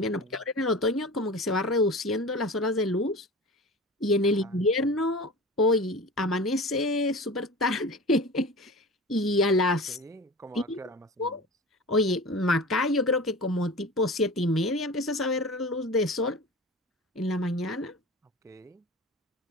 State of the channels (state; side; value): normal; both; correlation 0.34